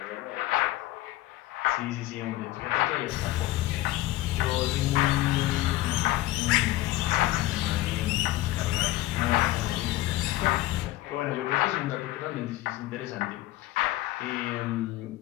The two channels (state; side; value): quieter; right; 16.8 dB